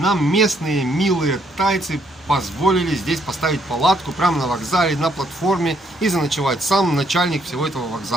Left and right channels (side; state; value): both; normal; correlation 0.70